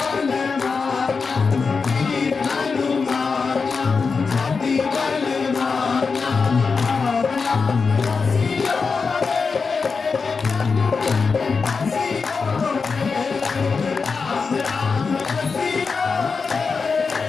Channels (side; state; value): right; quieter; 4.9 dB